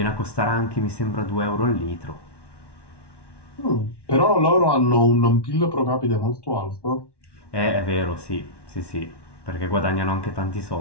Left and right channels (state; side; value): late; right; 1.1 ms